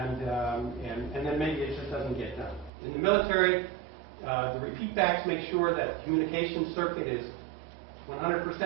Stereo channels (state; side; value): drops out; left; at 2.7 s